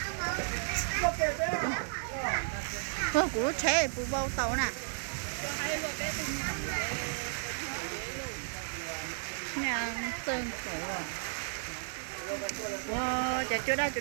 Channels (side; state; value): left; silent; digital silence